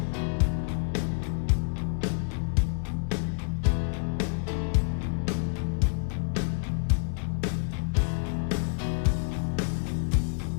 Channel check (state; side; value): silent; right; digital silence